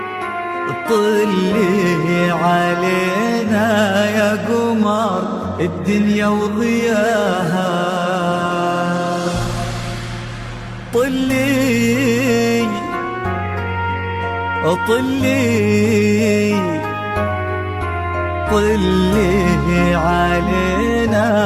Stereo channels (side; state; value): both; identical; correlation 1.00